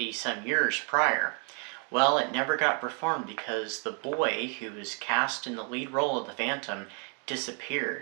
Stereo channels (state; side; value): quieter; left; 37.6 dB